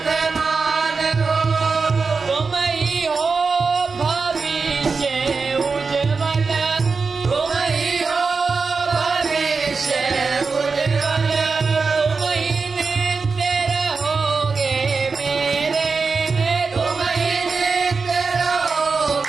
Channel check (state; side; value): quieter; left; 4.6 dB